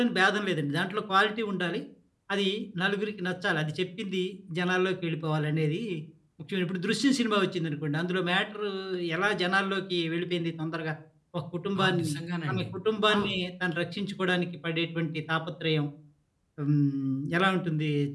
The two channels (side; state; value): both; identical; correlation 1.00